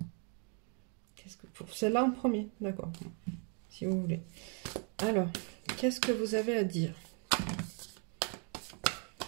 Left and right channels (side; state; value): left; quieter; 39.8 dB